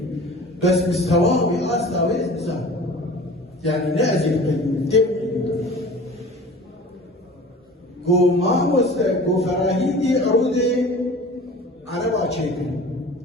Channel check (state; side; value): normal; both; correlation 0.42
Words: بس مستواه بأستاويز نزال يعني نأزل بالتبعي قو ما قو فراهيدي عرودي على باشيكل